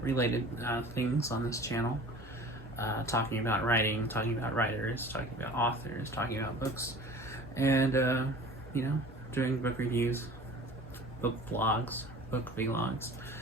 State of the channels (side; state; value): both; normal; correlation 0.42